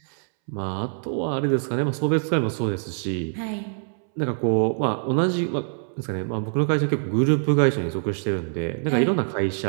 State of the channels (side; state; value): left; silent; 62 dB below the other